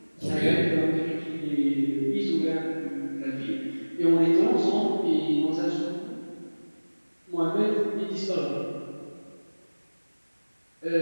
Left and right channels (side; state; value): both; inverted; correlation -1.00